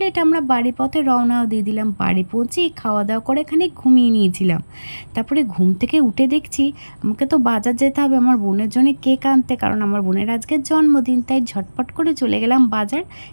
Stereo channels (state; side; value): inverted; both; correlation -1.00